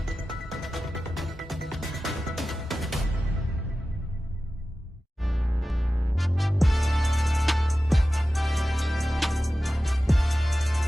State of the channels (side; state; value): both; normal; correlation 0.94